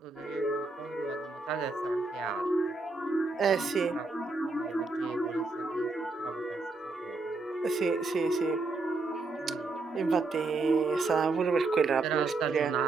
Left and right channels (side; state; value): left; quieter; 3.6 dB